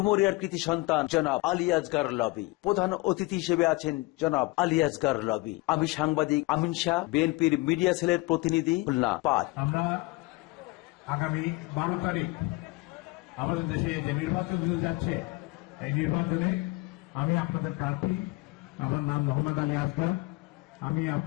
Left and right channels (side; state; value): right; quieter; 22.8 dB